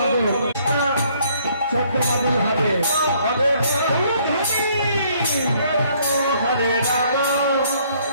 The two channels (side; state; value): both; inverted; correlation -0.64